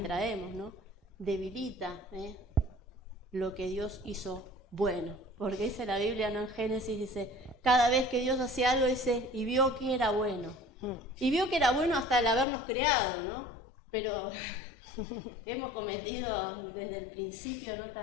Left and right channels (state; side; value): drops out; right; at 12.5 s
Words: ¿no? Debilita lo que Dios hizo bueno. Porque dice la Biblia, ¿no? En Génesis dice, cada vez que Dios hacía algo, dice, y vio que era bueno. Y vio que era bueno hasta el habernos creado, ¿no? Pero hemos cometido desde el principio, ¿no?